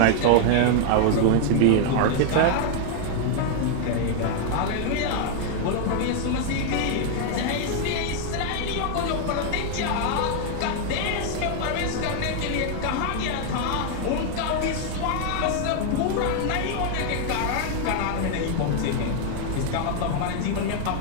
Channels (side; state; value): both; different; correlation 0.00